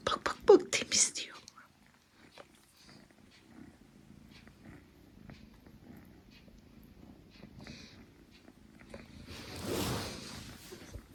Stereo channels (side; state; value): both; identical; correlation 1.00